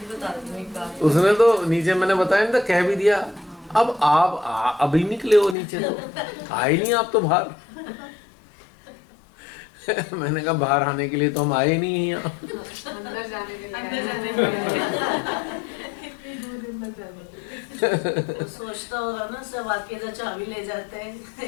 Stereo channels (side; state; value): right; drops out; at 5.6 s